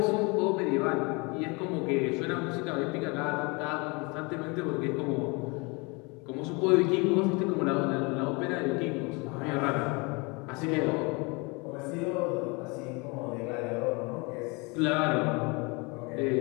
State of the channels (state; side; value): quieter; right; 28.7 dB